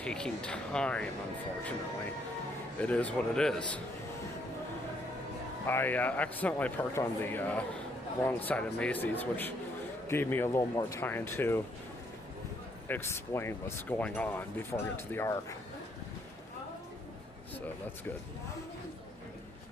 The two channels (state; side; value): normal; both; correlation 0.71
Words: time, unfortunately. It is what it is. I accidentally parked on the wrong side of Macy's, which gave me a little more time to explain what's going on before I get to the Ark. So that's good.